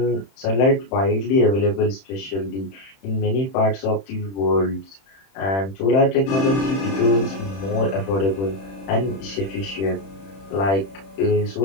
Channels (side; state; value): right; late; 31 ms